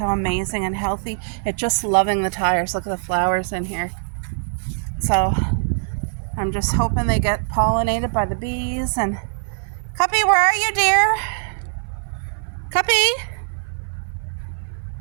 amazing and healthy. It's just loving the tires. Look at the flowers in here. So I'm just hoping they get pollinated by the bees. And Cuppy, where are you, dear? Cuppy?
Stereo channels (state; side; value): silent; left; 57 dB below the other